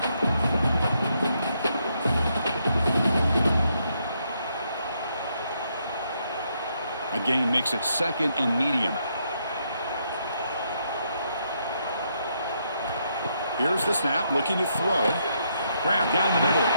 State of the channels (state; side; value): inverted; both; correlation -0.76